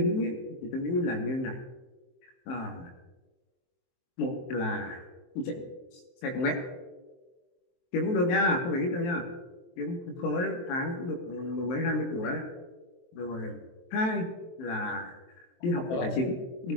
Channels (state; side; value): late; right; 23 ms